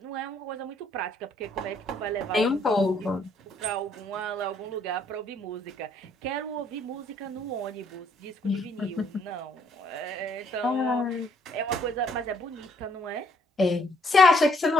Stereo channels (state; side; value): normal; both; correlation 0.67